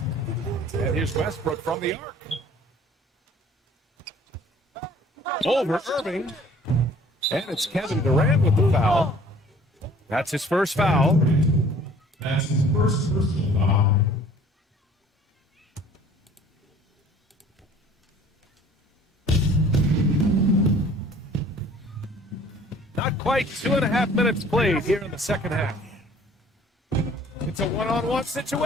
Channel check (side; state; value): both; normal; correlation 0.52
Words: And here's Westbrook from the arc. Over Irving. And it's Kevin Durant with the foul. That's his first foul. That's his first personal foul. Not quite 2.5 minutes played here in the second half. It's a one-on-one